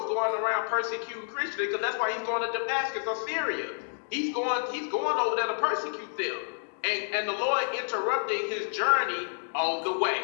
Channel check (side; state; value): right; silent; digital silence